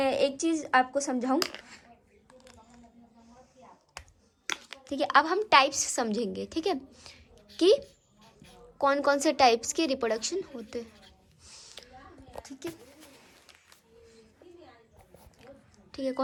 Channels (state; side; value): identical; both; correlation 1.00